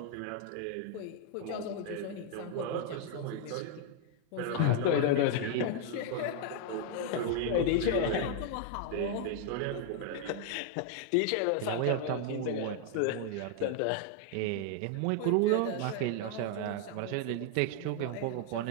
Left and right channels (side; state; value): both; different; correlation 0.00